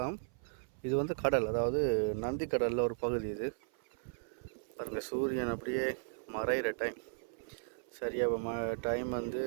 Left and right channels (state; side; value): silent; left; 54 dB below the other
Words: இது வந்து கடல். அதாவது நந்தி கடலில் ஒரு பகுதி இது. பாருங்கள் சூரியன் அப்படியே மறைகிற டைம் சரியாக டைம் வந்து